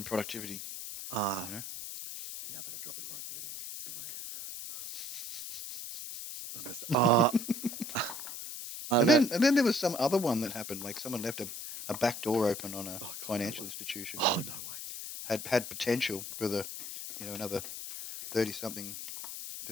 productivity. yeah, I've had a drop in productivity in some ways. And then there was some other one that happened. Like someone left a back door open on a financial institution. Oh, no way. Had potential for another 30-something,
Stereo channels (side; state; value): left; noise; hiss, 8 dB below the sound